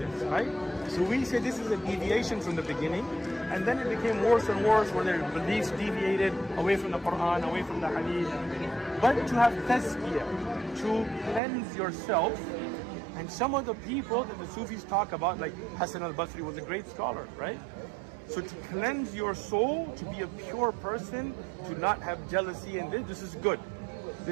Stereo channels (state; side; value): drops out; left; at 11.4 s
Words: right? So we say this is a deviation from the beginning, and then it became worse and worse, where their beliefs deviated away from the Quran, away from the Hadith. But to have tazkiyah, to cleanse yourself, and some of the people that the Sufis talk about, like Hassan al-Basri was a great scholar, right? So to cleanse your soul, to be a pure person, to not have jealousy, and this is good.